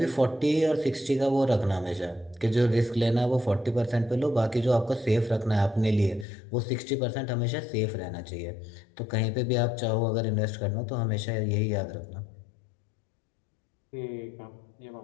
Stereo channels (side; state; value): right; drops out; at 6.2 s